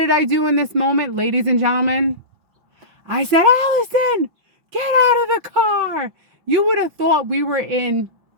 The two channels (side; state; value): left; late; 5.9 ms